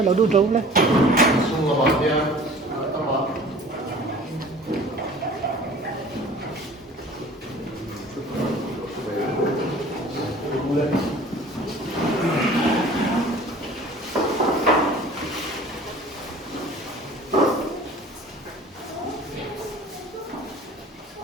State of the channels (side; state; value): both; normal; correlation 0.46